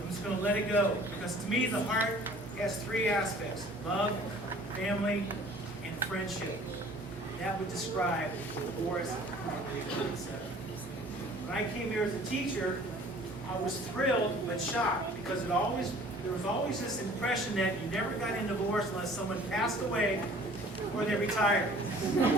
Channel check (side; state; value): both; normal; correlation 0.50